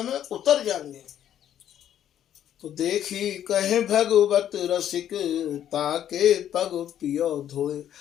में उतर जाएंगे। तो देखी कहे भगवत रसिक, ताके पग पियो धोए।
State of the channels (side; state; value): right; quieter; 10.6 dB